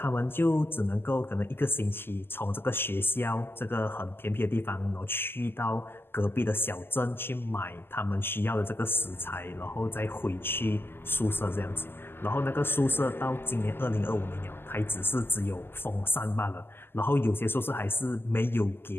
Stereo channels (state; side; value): late; right; 0.11 ms